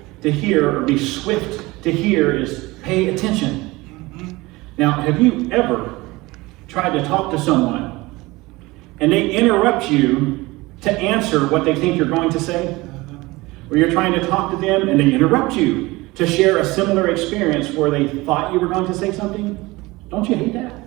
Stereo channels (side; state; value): left; quieter; 21.4 dB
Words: to hear or be swift to hear is pay attention. Now, have you ever tried to talk to someone and they interrupt you to answer what they think you're going to say? Or you're trying to talk to them and they interrupt you to share a similar experience where they thought you were going to say something? Don't you hate that?